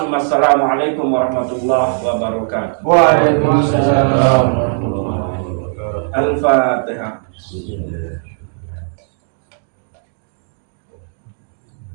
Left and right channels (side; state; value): left; silent; digital silence